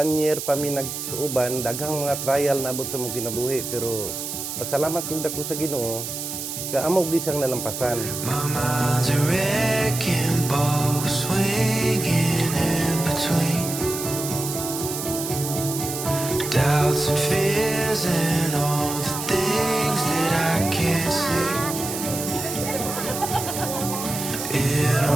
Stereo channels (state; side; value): noise; right; hiss, 6 dB below the sound